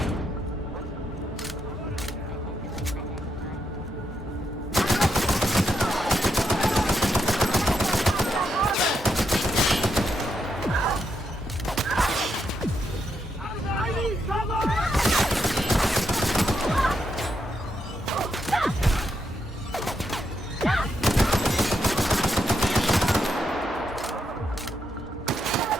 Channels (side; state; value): both; normal; correlation 0.81